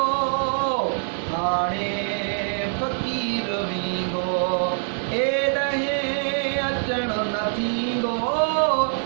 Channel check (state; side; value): silent; left; digital silence